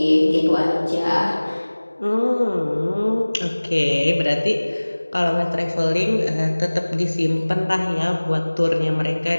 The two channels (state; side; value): inverted; both; correlation -1.00